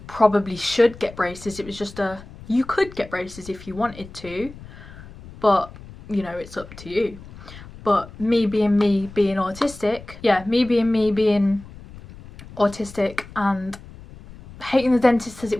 probably should get braces. It was just a, you could get braces if you wanted to. But, you know, it's up to you. But me being autistic, yeah, me being autistic and hating the dentist as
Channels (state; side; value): noise; left; rumble, 17 dB below the sound